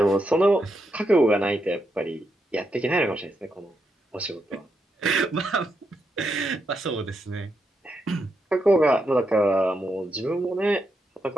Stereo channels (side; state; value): both; normal; correlation 0.82